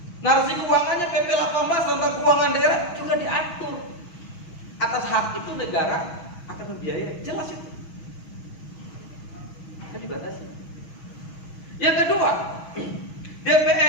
Narasi keuangannya PP 18 tentang keuangan daerah juga diatur. Atas hak itu negara akan membiayai, jelas itu. Kan dibatasi. Yang kedua,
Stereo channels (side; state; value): right; late; 6.2 ms